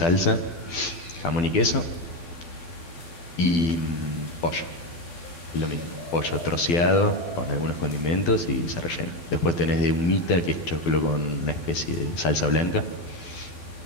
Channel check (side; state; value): right; late; 12 ms